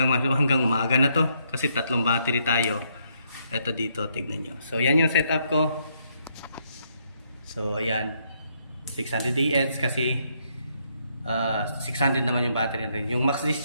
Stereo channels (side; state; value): both; inverted; correlation -0.74